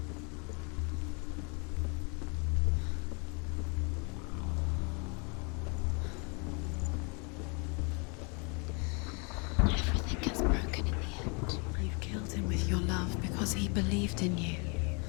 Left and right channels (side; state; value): right; quieter; 33.6 dB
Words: Everything gets broken in the end. You killed him with your love because he believed in you.